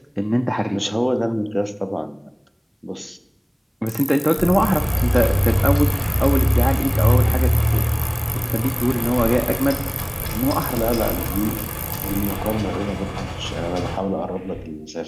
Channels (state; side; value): identical; both; correlation 1.00